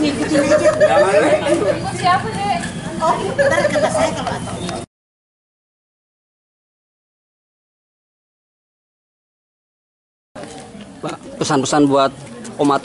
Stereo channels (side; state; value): both; identical; correlation 1.00